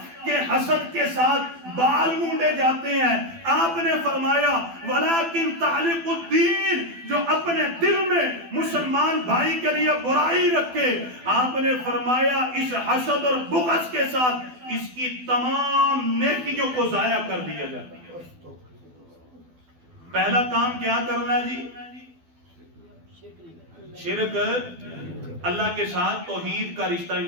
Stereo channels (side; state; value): left; late; 12 ms